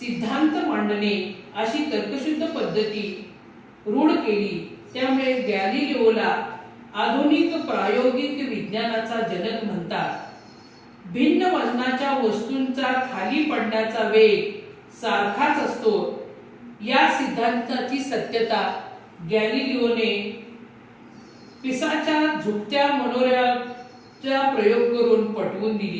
मांडणे अशी तर्कशुद्ध पद्धती रूढ केली. त्यामुळे गॅलिलिओला आधुनिक प्रायोगिक विज्ञानाचा जनक म्हणतात. भिन्न वजनाच्या वस्तूंचा खाली पडण्याचा वेग सारखाच असतो या सिद्धांताची सत्यता गॅलिलिओने पिसाच्या झुकत्या मनोऱ्याचा प्रयोग करून पटवून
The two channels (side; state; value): both; identical; correlation 1.00